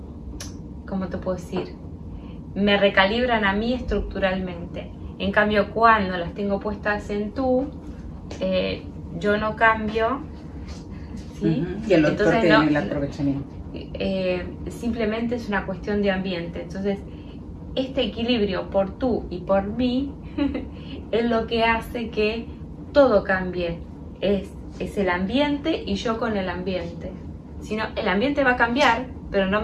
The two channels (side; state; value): both; identical; correlation 1.00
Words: ¿cómo te puedo decir? Me recalibran a mí estructuralmente. En cambio, cuando las tengo puestas en tú, yo no cambio, ¿sí? Y el otro tiene el aprovechamiento. Simplemente es una cuestión de ambiente. Entonces, este equilibrio por tú y por mí es lo que hace que todo cambie. Es el ambiente y yo con el ambiente. Si no, el ambiente va a cambiar, pero no